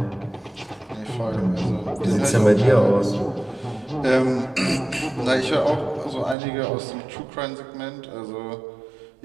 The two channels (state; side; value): drops out; left; at 6.4 s